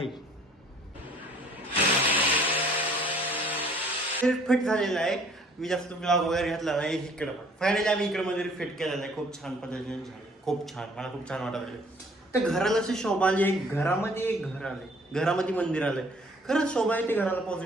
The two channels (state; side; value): normal; both; correlation 0.57